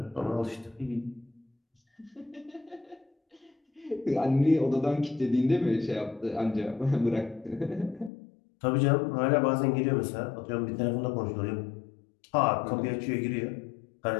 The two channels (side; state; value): right; drops out; at 8.1 s